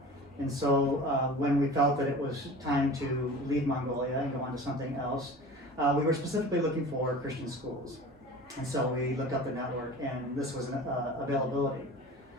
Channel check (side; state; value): both; normal; correlation 0.38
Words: And so when we felt that it was time to leave Mongolia and go on to something else, we were specifically looking for Christian schools. And so we looked up the network, and this was an availability.